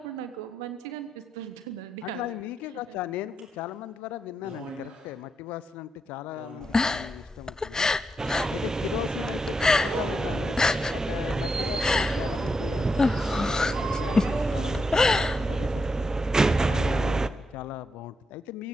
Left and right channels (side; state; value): both; normal; correlation 0.83